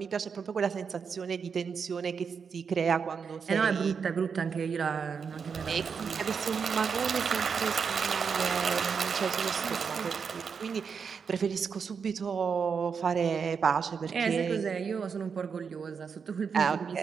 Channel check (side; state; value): left; quieter; 6.1 dB